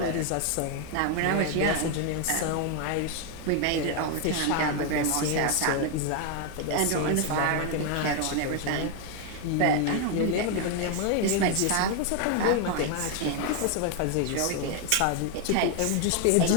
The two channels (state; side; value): different; both; correlation 0.01